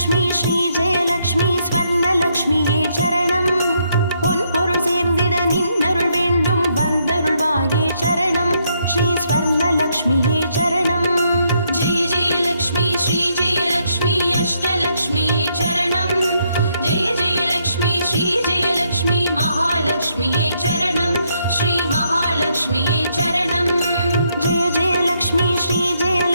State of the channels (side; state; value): both; inverted; correlation -0.75